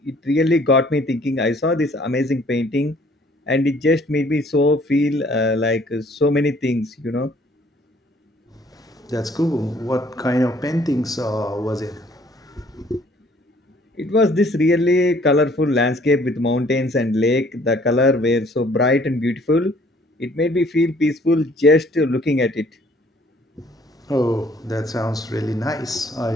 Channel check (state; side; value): normal; both; correlation 0.59